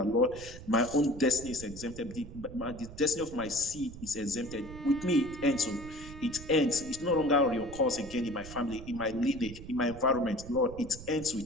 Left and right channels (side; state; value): right; noise; rumble, 14 dB below the sound